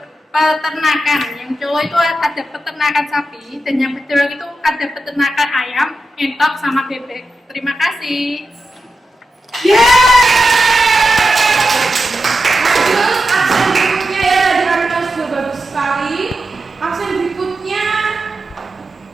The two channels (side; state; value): both; normal; correlation 0.89